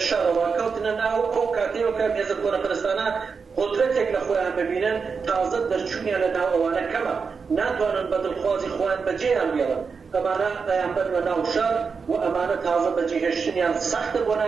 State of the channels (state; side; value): quieter; left; 5.4 dB